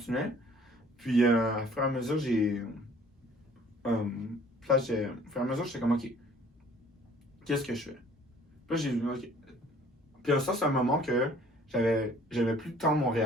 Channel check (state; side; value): normal; both; correlation 0.54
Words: Puis, au fur et à mesure, au fur et à mesure, j'étais comme, ok, qu'est-ce que je fais? Puis là, j'ai vu, ok. Puis ça, c'est un moment que j'avais plus de temps à